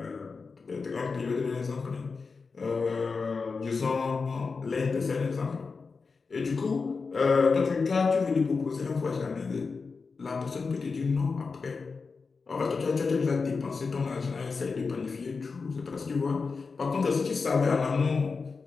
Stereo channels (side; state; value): right; quieter; 4.7 dB